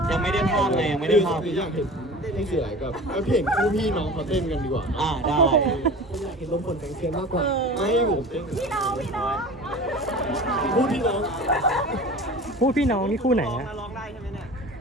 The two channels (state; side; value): normal; both; correlation 0.38